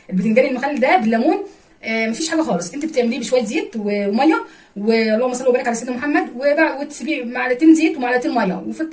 البتنجان المخلل ده بالليمون. مفيش حاجه خالص، انت بتعمليه بشويه زيت وميه، واللهم صل وبارك على سيدنا محمد، وتسيبيه معلقتين زيت ومعلقتين ميه وفي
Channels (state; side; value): identical; both; correlation 1.00